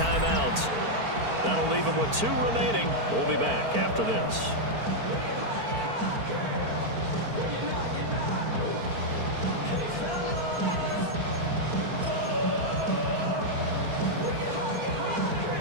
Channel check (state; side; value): late; left; 4.5 ms